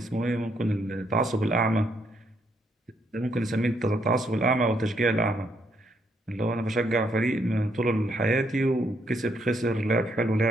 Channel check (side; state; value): both; normal; correlation 0.74